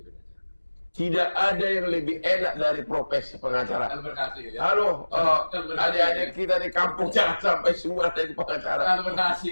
pengacara. Tidak ada yang lebih enak dari profesi pengacara. Kalau berhasil ya. Halo, adik-adik kita di kampung jangan sampai semua jadi pengacara. Kalau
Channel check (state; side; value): inverted; both; correlation -1.00